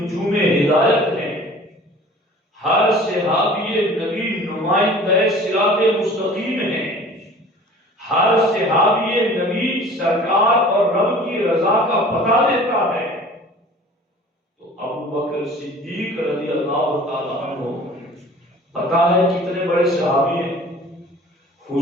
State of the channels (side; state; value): both; normal; correlation 0.45